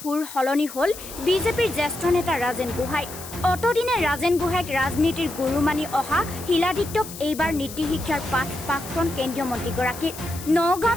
সলনি হ'ল বিজেপিৰ জ্যেষ্ঠ নেতা ৰাজেন গোহাঁই। অতদিনে ৰাজেন গোহাঁইক ৰাজনীতিৰ গুৰু মানি অহা শিলাদিত্যক এইবাৰ নীতি শিক্ষাৰ পাঠ প্ৰাক্তন কেন্দ্ৰীয় মন্ত্ৰীগৰাকীৰ।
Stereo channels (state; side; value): noise; left; hiss, 13 dB below the sound